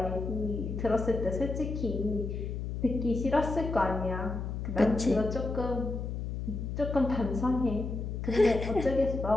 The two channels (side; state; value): left; noise; hum, 4 dB below the sound